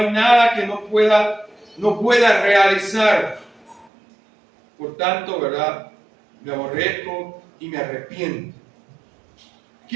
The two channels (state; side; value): drops out; left; at 3.9 s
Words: nada que no pueda realizar. Por tanto, ¿verdad?, me aborrezco y me arrepiento.